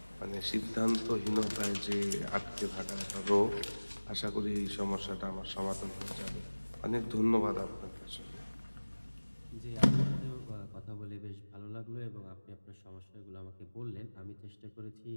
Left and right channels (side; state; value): both; inverted; correlation -1.00